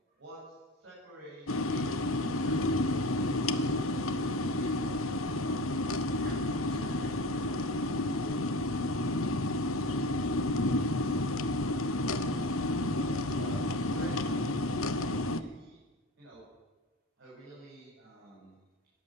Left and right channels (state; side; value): normal; both; correlation 0.32